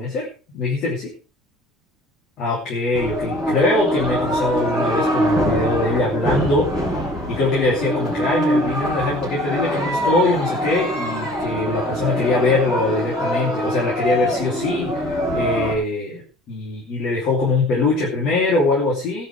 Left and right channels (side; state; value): both; normal; correlation 0.48